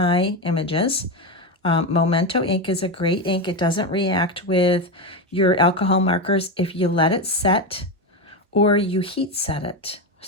images. Memento ink is a great ink. It doesn't react with your alcohol markers if you let it set or you heat set it.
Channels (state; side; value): normal; both; correlation 0.13